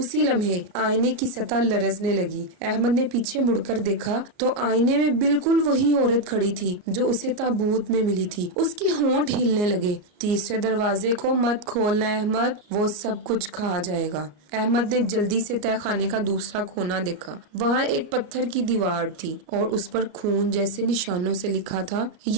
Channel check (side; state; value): left; late; 34 ms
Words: لمحے آئینے کی سطح لرزنے لگی۔ احمد نے پیچھے مڑ کر دیکھا تو آئینے میں بالکل وہی عورت کھڑی تھی جو اسے تابوت میں ملی تھی۔ اس کے ہونٹ ہلنے لگے۔ تیسرے دروازے کو مت کھولنا احمد، وہ سب کچھ کھا جائے گا۔ احمد نے جلدی سے تہہ خانے کا دوسرا کونا دیکھا۔ وہاں ایک پتھر کی دیوار تھی اور اس پر خون جیسے نشانوں سے لکھا تھا،